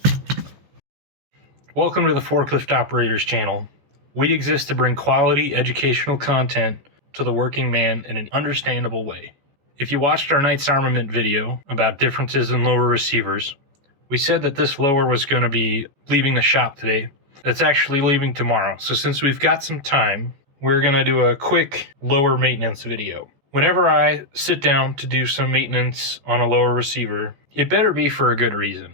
Welcome to the Forklift Operators channel. We exist to bring quality educational content to the working man in an understandable way. If you watched our Knights Armament video about differences in lower receivers, we said that this lower was going to be leaving the shop today. It's actually leaving tomorrow. So since we've got some time, we're going to do a quick lower maintenance video. Whenever I sit down to do some maintenance on a lower receiver, it better be for a good reason.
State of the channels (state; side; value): late; left; 15 ms